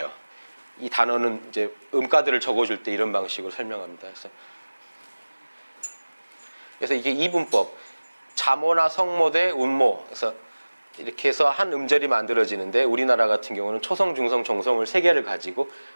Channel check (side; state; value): both; inverted; correlation -1.00